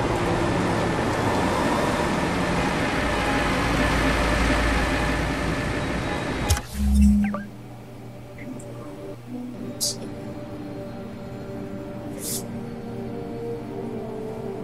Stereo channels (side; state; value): both; identical; correlation 1.00